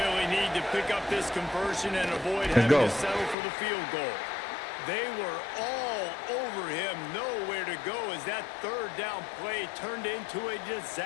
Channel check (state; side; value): drops out; right; at 3.4 s